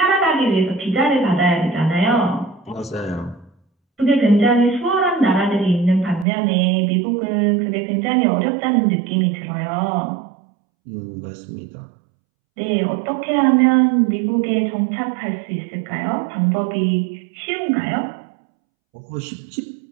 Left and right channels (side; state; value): left; drops out; at 6.2 s